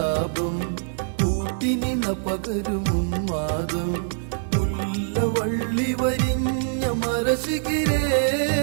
കൂട്ടിനിണ പകരുമും മാതം മുല്ലവള്ളി വരിഞ്ഞ മരശിഖിരേ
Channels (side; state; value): left; silent; digital silence